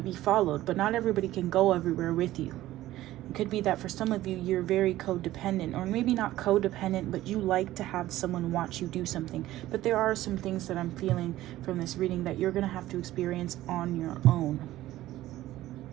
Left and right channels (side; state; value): left; quieter; 15.2 dB